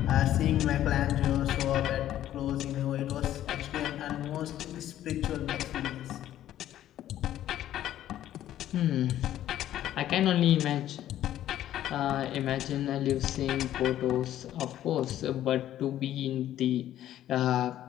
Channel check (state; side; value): quieter; right; 12.4 dB